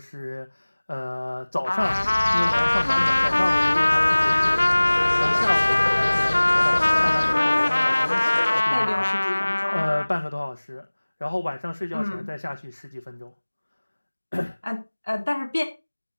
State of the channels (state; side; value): inverted; both; correlation -1.00